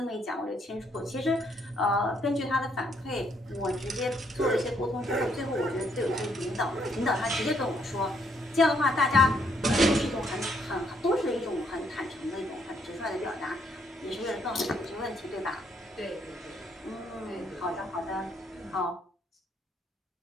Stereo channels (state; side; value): normal; both; correlation 0.71